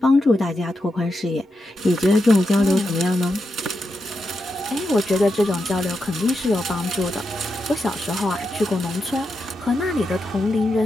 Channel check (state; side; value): normal; both; correlation 0.86